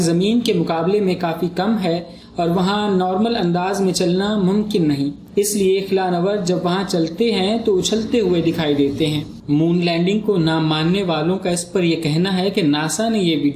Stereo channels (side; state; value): both; identical; correlation 1.00